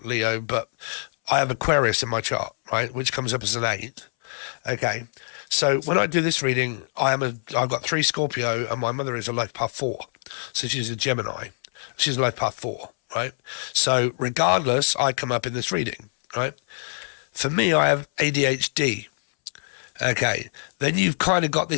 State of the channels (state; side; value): silent; right; 62 dB below the other